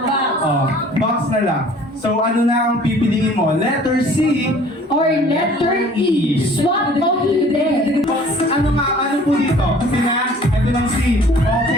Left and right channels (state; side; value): normal; both; correlation 0.51